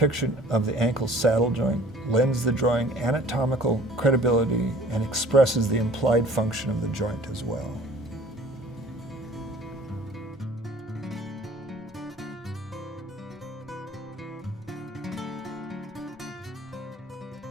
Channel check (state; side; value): normal; both; correlation 0.50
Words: of the ankle saddle joint lends the drawing anatomical credibility and expresses the implied function of the joint as well.